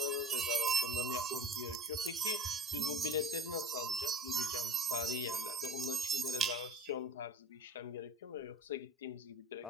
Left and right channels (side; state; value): both; normal; correlation 0.36